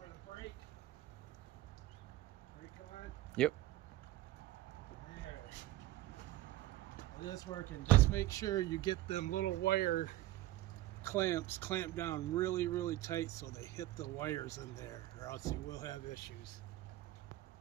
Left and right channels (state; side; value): quieter; left; 15.5 dB